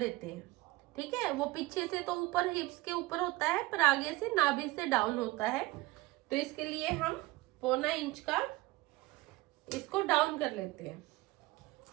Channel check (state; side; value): quieter; left; 20.5 dB